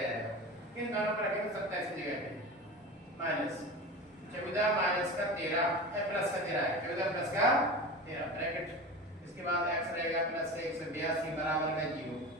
इन दोनों पर रखेंगे 27 की जगह पे माइनस 14 माइनस का 13 प्लस का 13 है, 14 प्लस का 13 ब्रैकेट, इसके बाद x रहेगा प्लस 182 बराबर में 0।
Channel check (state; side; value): normal; both; correlation 0.30